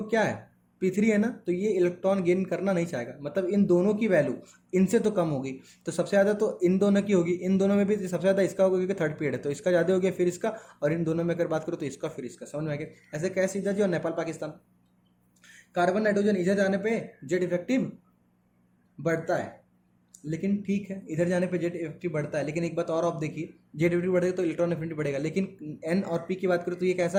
क्या है P3 है ना, तो ये इलेक्ट्रॉन गेन करना नहीं चाहेगा, मतलब इन दोनों की वैल्यू इनसे तो कम होगी, तो सबसे ज़्यादा तो इन दोनों की होगी, इन दोनों में भी सबसे ज़्यादा इसका होगा क्योंकि थर्ड पीरियड है, तो इसका ज़्यादा हो गया फिर इसका, और इन दोनों में अगर बात करो तो इसका फिर इसका, समझ में आ गया। ऐसे कैसे सीधा जी, और नेपाल पाकिस्तान, कार्बन नाइट्रोजन इधर जाने पे जेड इफेक्टिव बढ़ता है, लेकिन ठीक है इधर जाने पे जेड इफेक्टिव बढ़ता है, लेकिन एक बात और आप देखिए, जेड इफेक्टिव बढ़ेगा तो इलेक्ट्रॉन एफिनिटी बढ़ेगा, लेकिन एन और पी की बात करो तो ये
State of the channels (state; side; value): identical; both; correlation 1.00